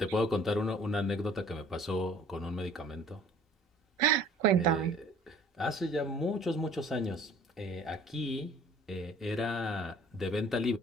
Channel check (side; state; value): both; normal; correlation 0.52